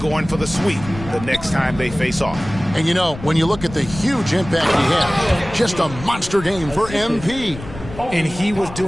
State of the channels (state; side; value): noise; left; rumble, 13 dB below the sound